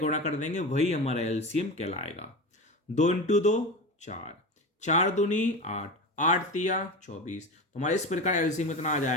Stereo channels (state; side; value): normal; both; correlation 0.26